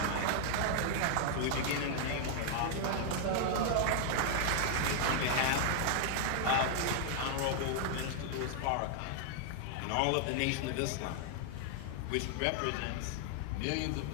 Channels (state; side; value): different; both; correlation 0.00